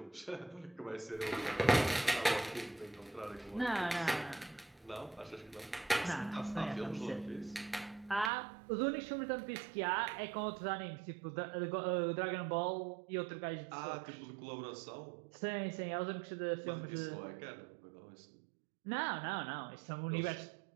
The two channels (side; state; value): left; drops out; at 8.3 s